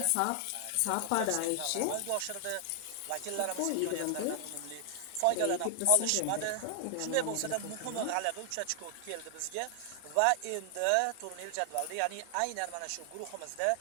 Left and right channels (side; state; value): both; different; correlation 0.00